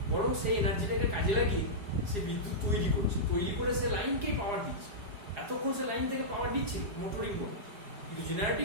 বরং সেই এনার্জিটাকে কাজে লাগিয়ে সে বিদ্যুৎ তৈরি করছে, তৈরি করে সে লাইনকেই পাওয়ার দিচ্ছে। এতক্ষণ সে লাইন থেকে পাওয়ার দিচ্ছে মোটরিং মোডে, কিন্তু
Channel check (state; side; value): late; left; 4.8 ms